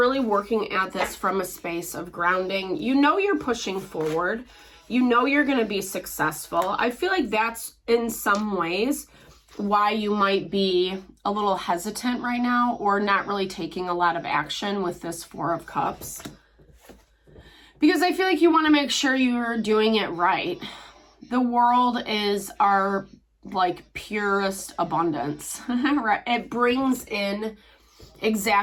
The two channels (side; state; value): both; identical; correlation 1.00